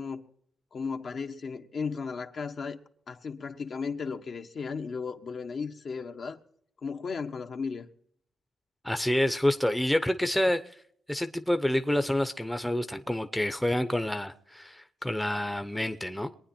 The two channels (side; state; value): both; normal; correlation 0.97